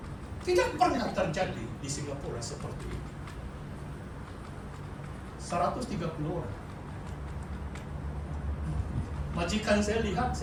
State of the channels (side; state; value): both; identical; correlation 1.00